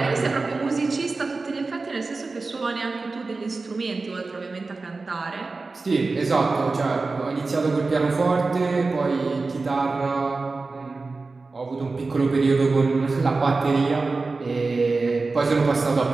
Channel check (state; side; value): quieter; left; 3.8 dB